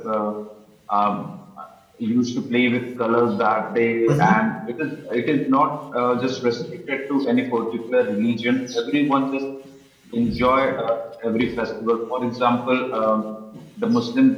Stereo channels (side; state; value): both; identical; correlation 1.00